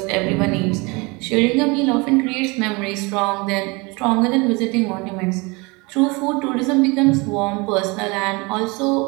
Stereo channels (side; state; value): left; quieter; 27.0 dB